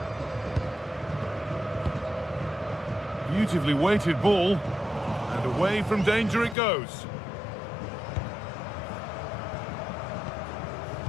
Beautifully weighted ball, and away from danger it goes.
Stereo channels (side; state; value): right; drops out; at 6.6 s